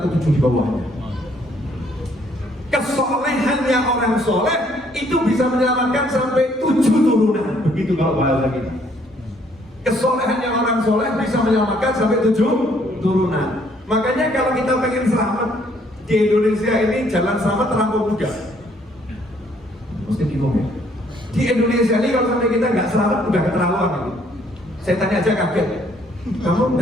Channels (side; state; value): both; normal; correlation 0.65